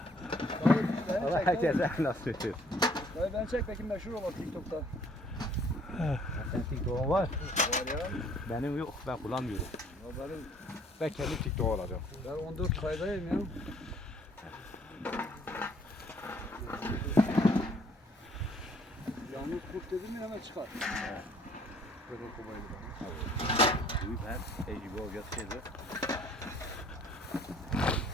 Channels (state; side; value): normal; both; correlation 0.59